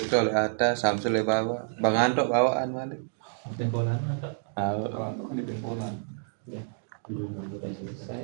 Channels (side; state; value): left; silent; digital silence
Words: oleh atas Samsul oleh bawah Bang Antok bawaan balik Tempolan apa? Kan di Polan. Udah